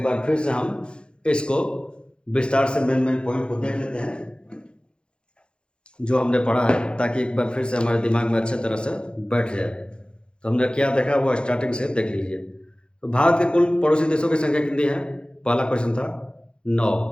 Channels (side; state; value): right; late; 0.053 ms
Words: बार फिर से हम इसको विस्तार से मेन पॉइंट को देख लेते हैं जो हमने पढ़ा है, ताकि एक बार फिर से हमारे दिमाग में अच्छे तरह से बैठ जाए। तो हमने क्या देखा वो स्टार्टिंग से देख लीजिए। तो भारत के कुल पड़ोसी देशों की संख्या कितनी है? पहला क्वेश्चन था